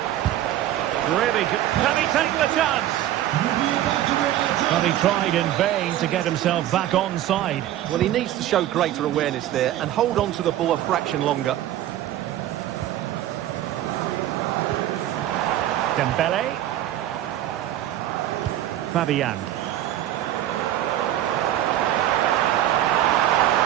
Really good. Can he take the chance? Well, he tried in vain to get himself back onside. Well, he needs to show greater awareness there and hold on to the ball a fraction longer. Dembele. Fabian.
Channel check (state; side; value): quieter; left; 12.8 dB